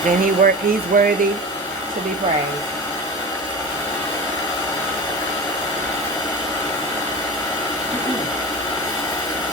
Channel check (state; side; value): normal; both; correlation 0.29